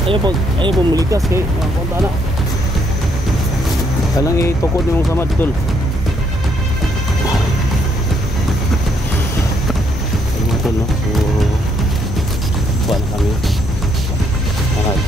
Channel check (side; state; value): both; normal; correlation 0.72